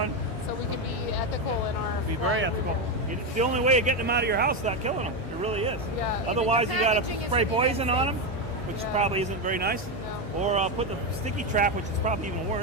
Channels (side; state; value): both; normal; correlation 0.10